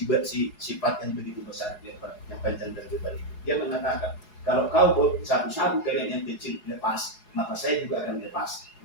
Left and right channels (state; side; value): late; right; 4.8 ms